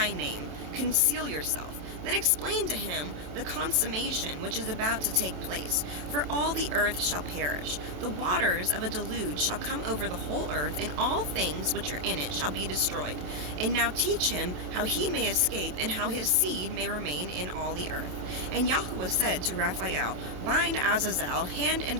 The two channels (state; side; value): late; left; 27 ms